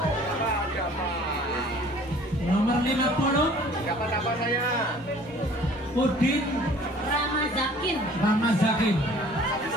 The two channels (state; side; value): normal; both; correlation 0.51